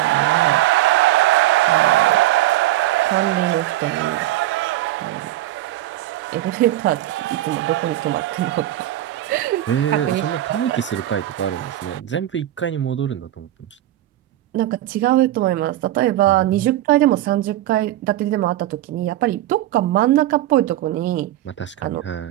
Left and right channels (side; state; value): left; quieter; 14.4 dB